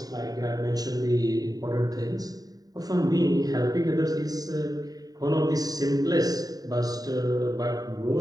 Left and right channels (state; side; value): late; left; 0.18 ms